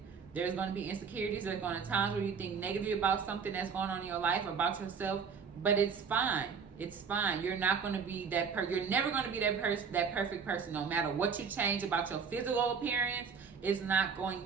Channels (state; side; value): quieter; left; 6.0 dB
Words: There's going to be insecurities. There's going to be times where you think negatively about something that's going on in your life or about yourself, but it's fine. It's fine. You're not going to be that you're never going to be that perfect person. No matter what you change about your physical appearance, it's not